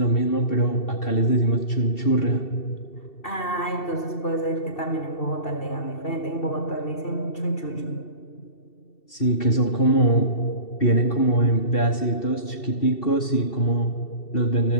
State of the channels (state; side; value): late; right; 2.7 ms